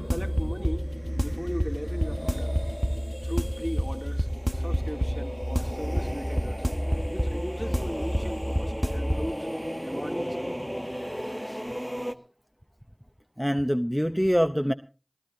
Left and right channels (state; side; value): identical; both; correlation 1.00